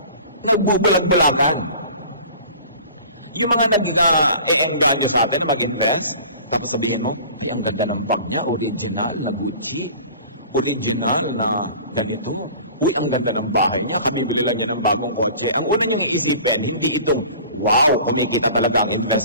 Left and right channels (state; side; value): inverted; both; correlation -0.43